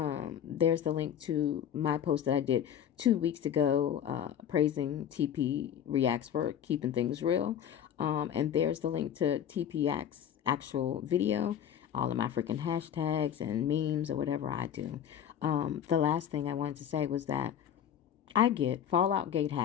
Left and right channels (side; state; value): right; quieter; 9.5 dB